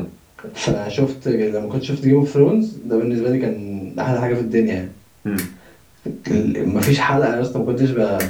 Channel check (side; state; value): both; identical; correlation 1.00